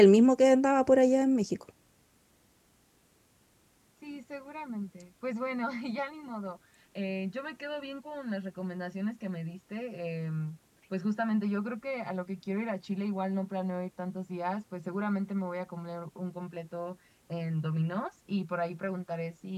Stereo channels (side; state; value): both; identical; correlation 1.00